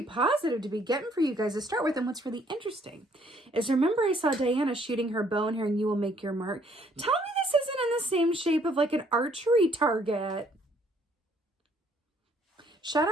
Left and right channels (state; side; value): normal; both; correlation 0.65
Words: positive to be getting for you guys to start with. And what's really interesting is, remember I saw Diana shooting her bow and hearing you will make your mark. Tell me this isn't in the same shape of like an archery target. Shout